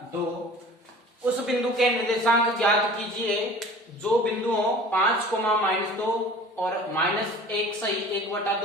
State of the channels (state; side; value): normal; both; correlation 0.44